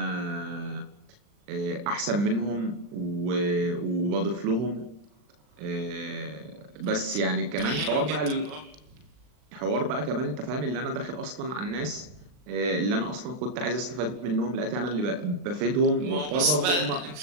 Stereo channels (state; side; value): late; left; 39 ms